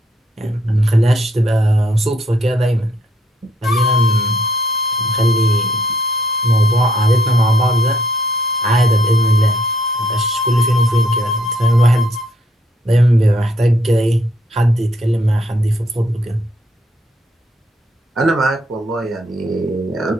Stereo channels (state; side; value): normal; both; correlation 0.68